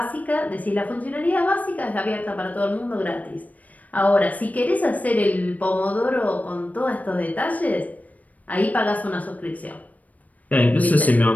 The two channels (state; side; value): late; right; 0.073 ms